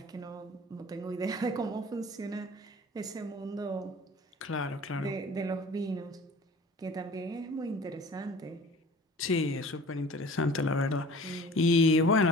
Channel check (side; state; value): both; normal; correlation 0.44